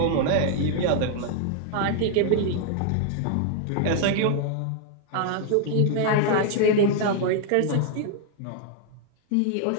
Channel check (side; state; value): both; different; correlation 0.00